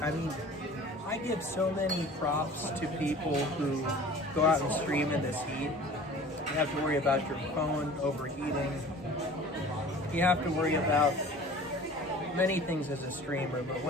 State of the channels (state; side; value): normal; both; correlation 0.44